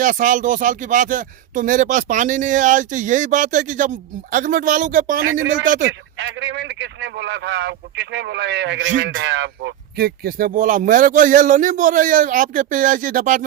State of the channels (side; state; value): left; quieter; 12.1 dB